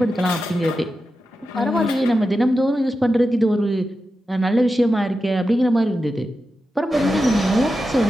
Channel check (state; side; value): normal; both; correlation 0.91